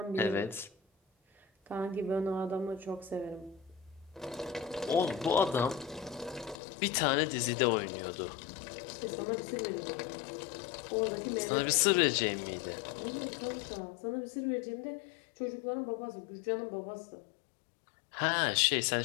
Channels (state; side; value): drops out; right; at 6.6 s